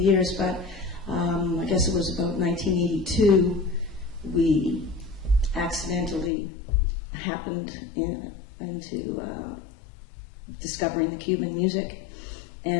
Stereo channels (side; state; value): right; drops out; at 6.3 s